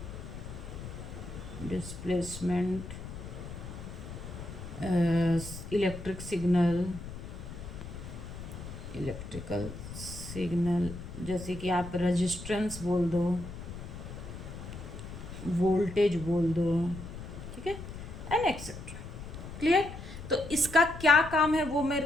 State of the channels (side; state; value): left; noise; rumble, 10 dB below the sound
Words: डिस्प्लेसमेंट इलेक्ट्रिकल सिग्नल, जैसे कि आप रेजिस्टेंस बोल दो, वोल्टेज बोल दो, ठीक है, एंड एक्सेट्रा। क्लियर? तो इसका क्या काम है वो